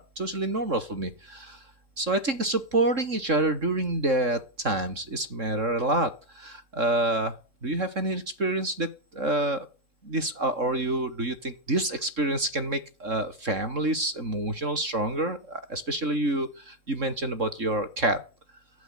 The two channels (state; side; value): late; left; 3.7 ms